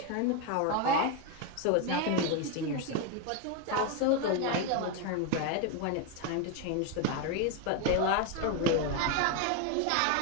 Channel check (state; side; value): different; both; correlation 0.02